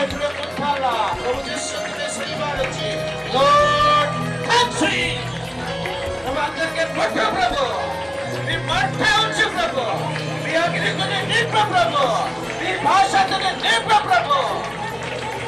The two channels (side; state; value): both; identical; correlation 1.00